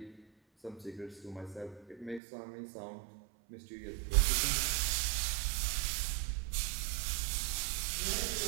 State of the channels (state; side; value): drops out; left; at 2.2 s